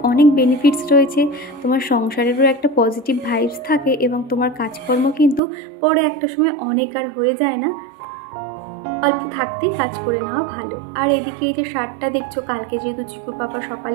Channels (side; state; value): left; drops out; at 5.4 s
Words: অনেক বেনিফিটস রয়েছে, তোমার সংসারেরও একটা পজিটিভ ভাইবস থাকে এবং তোমার কাজকর্ম কিন্তু পরে একটা সময় অনেক আর হয়ে যায় না, অল্প থাকতেই কাজ করে নেওয়া ভালো। আর এদিকে এই যে শার্টটা দেখছো, কালকে যেহেতু চিকুর পাপা